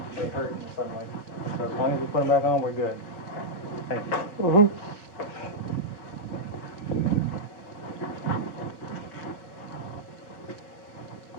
they hurt in the sunlight. So as long as we put them back on, we're good. Thank you. Mm-hmm.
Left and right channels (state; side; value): late; right; 5.4 ms